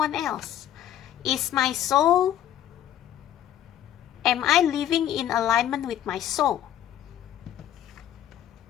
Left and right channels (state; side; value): quieter; right; 11.2 dB